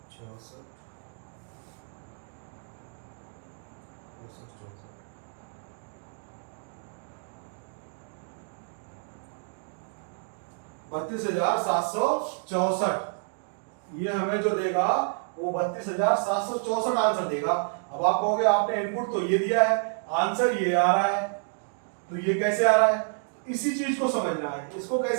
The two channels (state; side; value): silent; left; digital silence